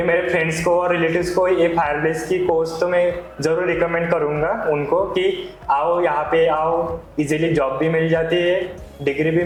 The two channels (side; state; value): both; identical; correlation 1.00